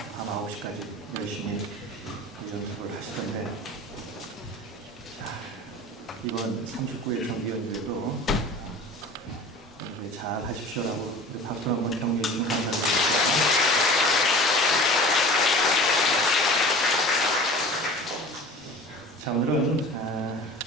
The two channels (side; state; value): both; normal; correlation 0.40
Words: 밤 9시까지 열심히 연습을 하시던데, 이번 39일 정기 연구회도 잘 하십시오라고 박수 한번 격려해 주시면 감사드리겠습니다. 자, 오늘은